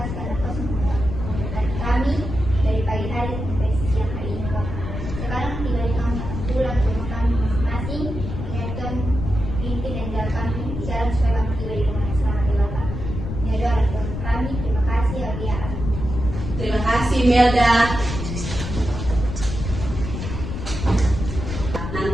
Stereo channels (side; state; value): left; noise; rumble, 6 dB below the sound